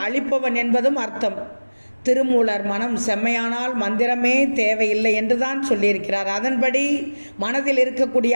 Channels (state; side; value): inverted; both; correlation -1.00